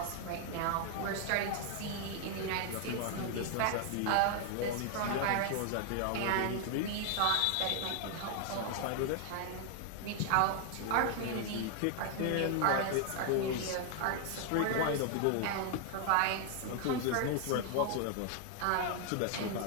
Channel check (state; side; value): different; both; correlation 0.00